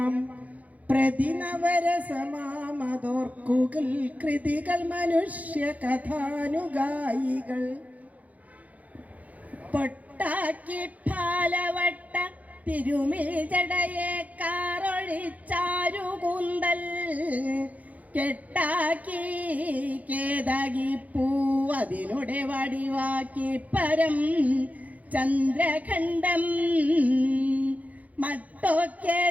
പ്രതിനവരസമാമതോർക്കുകൾ കൃതികൾ മനുഷ്യ കഥാനുഗായികൾ പൊട്ടാക്കി ഫാലവട്ട തിരുമിൽ ജടയെ കാറൊഴിച്ചാരുകൂന്തൽ കെട്ടാക്കി കേതാകി പൂവതിനുടെ വടിവാക്കി പരം ചന്ദ്രഖണ്ഡം മട്ടൊക്കെ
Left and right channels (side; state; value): left; late; 0.074 ms